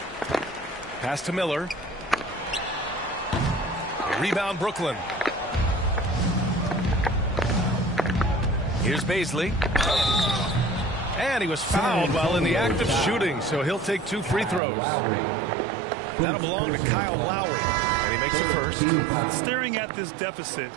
Pass to Miller. Rebound Brooklyn. Here's Baisley. And he was fouled while in the act of shooting, so he'll take 2 free throws. That'll belong to Kyle Lowry, and he makes the first. Staring at this deficit,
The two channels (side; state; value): left; drops out; at 14.6 s